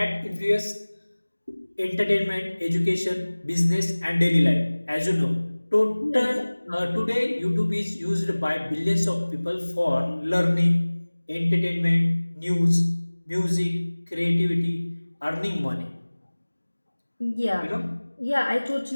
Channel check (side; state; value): both; inverted; correlation -1.00